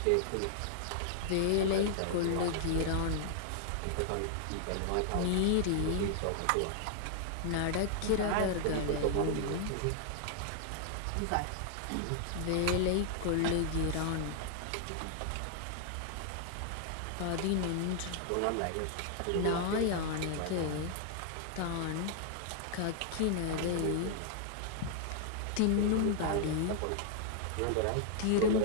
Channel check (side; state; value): both; different; correlation -0.01